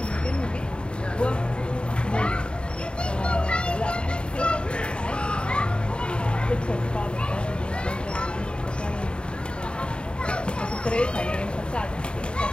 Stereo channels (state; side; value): late; right; 0.053 ms